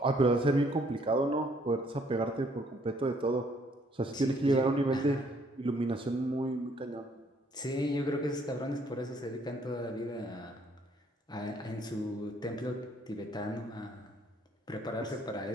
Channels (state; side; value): normal; both; correlation 0.65